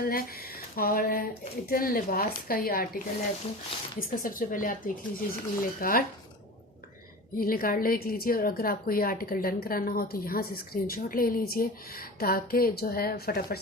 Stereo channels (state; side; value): normal; both; correlation 0.33